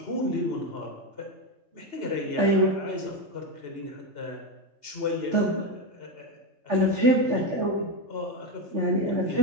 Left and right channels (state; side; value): late; left; 3.4 ms